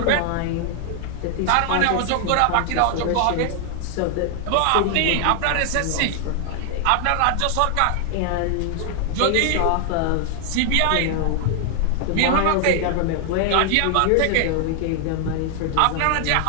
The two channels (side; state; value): both; different; correlation 0.00